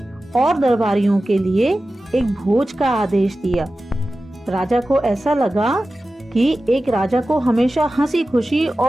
और दरबारियों के लिए एक भोज का आदेश दिया। राजा को ऐसा लगा कि एक राजा को हमेशा हंसी खुशी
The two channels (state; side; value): normal; both; correlation 0.95